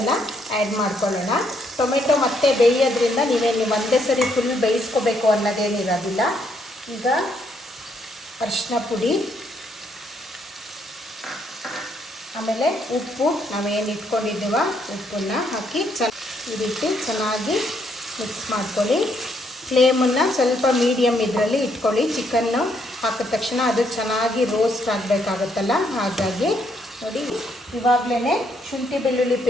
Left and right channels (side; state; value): both; normal; correlation 0.73